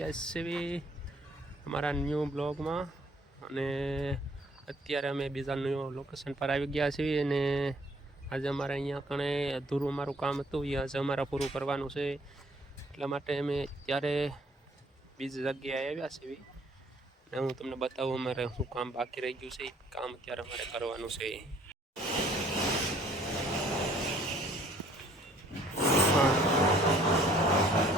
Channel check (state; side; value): normal; both; correlation 0.60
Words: છીએ અમારા ન્યૂ બ્લોગમાં અને અત્યારે અમે બીજા ન્યૂ લોકેશન પર આવી ગયા છીએ અને આજે અમારે અહીંયા કણે અધૂરું અમારું કામ હતું એ આજે અમારે પૂરું કરવાનું છે. એટલા માટે અમે ત્યારે બીજી જગ્યાએ આવ્યા છીએ અને હું તમને બતાવું અમારે શું કામ બાકી રહી ગયું છે. કામ અત્યારે અમારે કરવાનું છે.